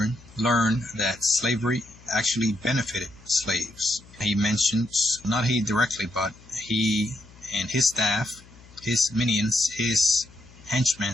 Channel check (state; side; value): noise; left; hum, 23 dB below the sound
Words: learn that slavery actually benefited slaves. He mentions, not he directly, but he and his staff, his minions, his